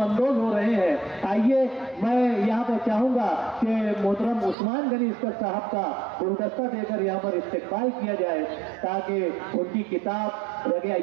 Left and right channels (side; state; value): left; drops out; at 4.5 s